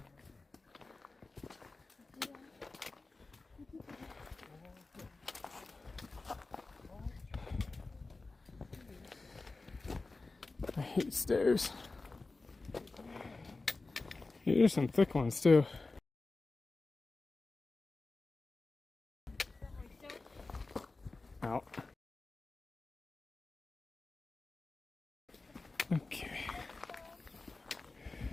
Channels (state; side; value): quieter; right; 3.5 dB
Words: I hate stairs. Here's some thick ones too. Out. Okay.